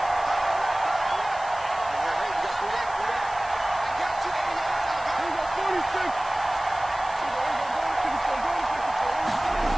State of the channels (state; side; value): noise; left; hiss, 19 dB below the sound